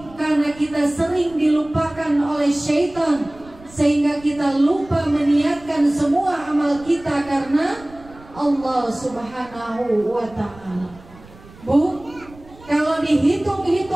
karena kita sering dilupakan oleh syaitan sehingga kita lupa meniatkan semua amal kita karena Allah Subhanahu wa ta'ala. Bu, kalau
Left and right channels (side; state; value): right; noise; rumble, 22 dB below the sound